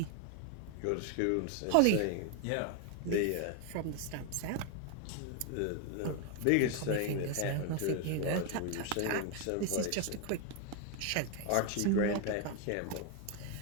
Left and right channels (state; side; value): different; both; correlation 0.01